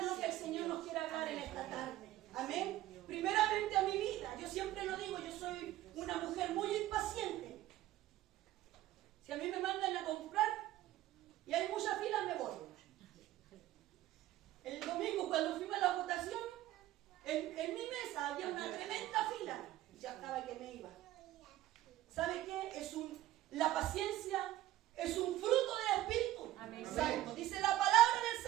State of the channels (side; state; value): left; quieter; 14.7 dB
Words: lo que el Señor nos quiere hablar en esta tarde. Amén. Primeramente a mi vida. Yo siempre lo digo, yo soy una mujer muy impaciente. Si a mí me mandan a comprar y hay mucha fila, me voy. El domingo cuando fuimos a la votación, en mi mesa había una tremenda fila. Ya estaba que me iba. ¿Sabe qué? La paciencia es un fruto del Espíritu Santo. Dice la palabra